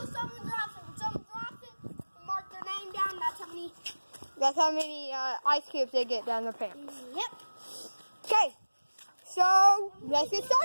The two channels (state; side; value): inverted; both; correlation -1.00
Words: someone drops it. When someone drops it, you mark their name down. that's how many ice cubes they get down their pants. Yep. Okay, so let's get